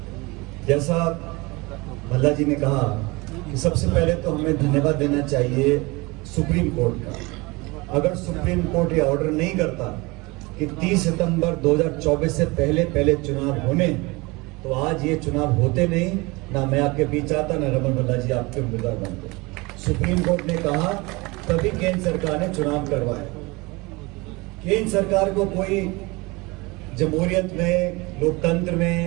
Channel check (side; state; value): left; quieter; 24.6 dB